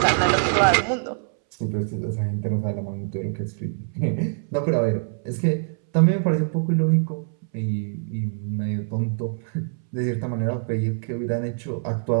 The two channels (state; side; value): silent; left; 62 dB below the other